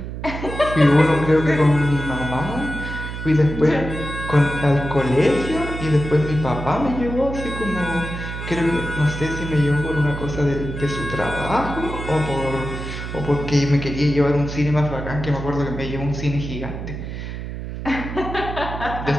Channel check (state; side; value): noise; right; hum, 7 dB below the sound